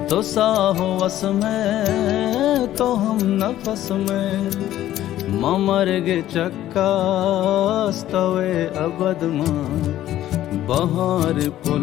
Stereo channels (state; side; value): quieter; right; 13.2 dB